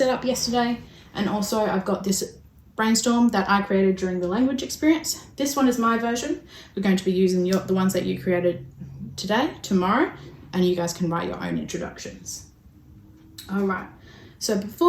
up yesterday. And also I've got this brainstorm that I created during the language experience. This one is my version. We're going to be using the ones that you created today, tomorrow, and you guys can write your own introductions. All right. So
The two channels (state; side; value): identical; both; correlation 1.00